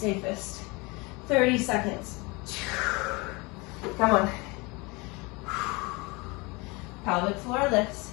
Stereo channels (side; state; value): right; quieter; 26.4 dB